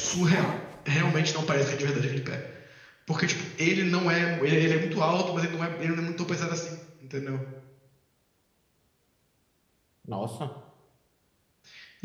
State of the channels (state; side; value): identical; both; correlation 1.00